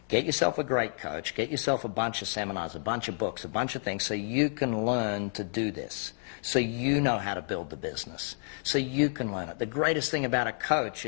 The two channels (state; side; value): silent; right; 58 dB below the other